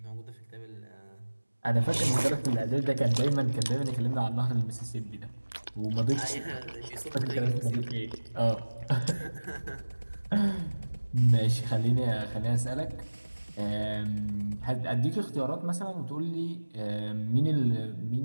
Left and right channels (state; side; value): inverted; both; correlation -1.00